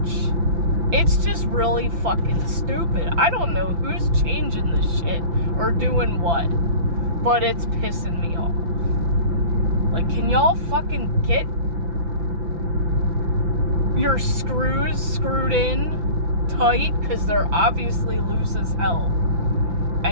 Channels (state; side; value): late; left; 5.9 ms